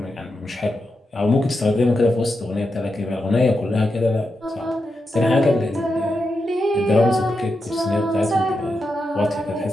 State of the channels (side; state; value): both; normal; correlation 0.87